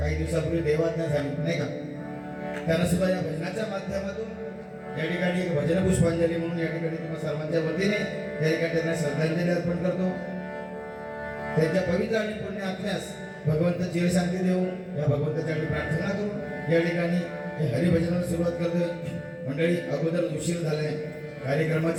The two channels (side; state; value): both; identical; correlation 1.00